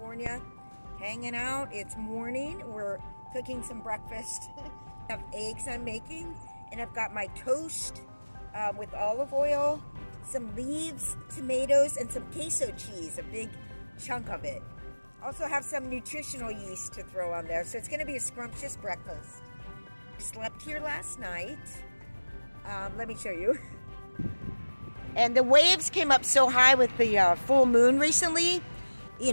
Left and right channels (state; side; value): inverted; both; correlation -1.00